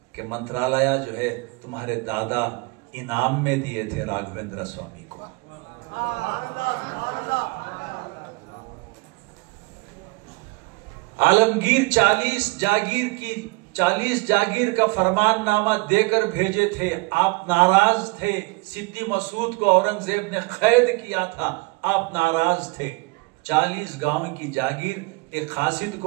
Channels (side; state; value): left; quieter; 26.9 dB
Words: कि मंत्रालय जो है तुम्हारे दादा इनाम में दिए थे राघवेंद्र स्वामी को। आलमगीर 40 जागीर की 40 जागीर का फरमाननामा देकर भेजे थे, आप नाराज थे। सिद्दी मसूद को औरंगजेब ने कैद किया था, आप नाराज थे। 40 गांव की जागीर एक खासिद